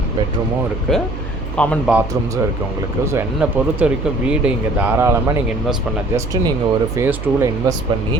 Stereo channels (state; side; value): noise; right; hum, 8 dB below the sound